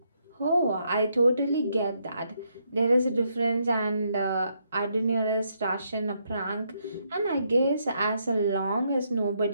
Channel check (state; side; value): inverted; both; correlation -0.76